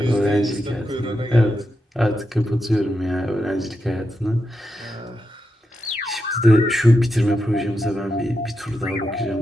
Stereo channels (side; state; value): both; normal; correlation 0.86